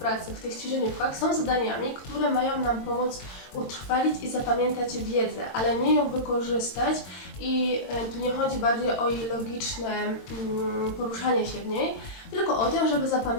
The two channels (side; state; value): right; late; 22 ms